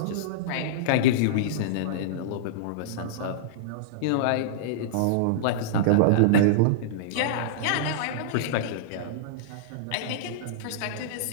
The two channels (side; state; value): both; different; correlation -0.02